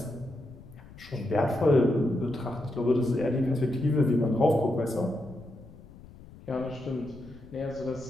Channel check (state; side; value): noise; left; rumble, 19 dB below the sound